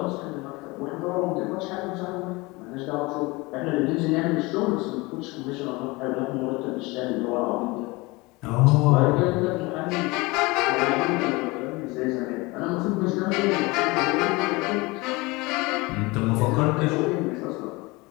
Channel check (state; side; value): quieter; right; 23.9 dB